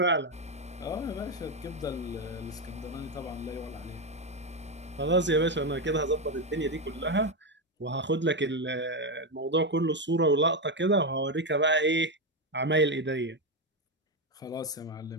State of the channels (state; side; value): normal; both; correlation 0.09